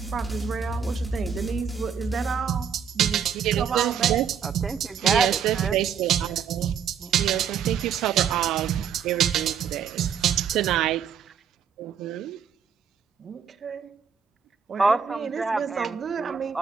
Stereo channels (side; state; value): left; quieter; 7.5 dB